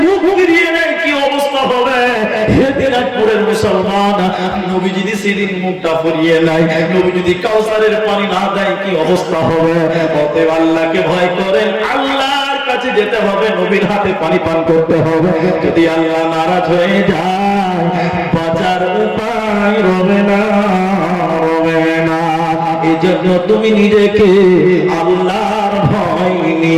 মুখ ফিরিয়ে নেয়, কি অবস্থা হবে? হে দিনাজপুরের মুসলমান, নবী যদি সেদিন মুখটা ফিরিয়ে নেয়, নবী যদি কাউসারের পানি না দেয়, কি অবস্থা হবে? অতএব আল্লাহকে ভয় করেন, আল্লাহর কাছে যেতে হবে, নবীর হাতে পানি পান করতে হবে। যদি আল্লাহ নারাজ হয়ে যায়, বাঁচার উপায় রবে না, রবে না। এই জন্য তুমি নিজেকে আল্লাহর ভয়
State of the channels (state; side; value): identical; both; correlation 1.00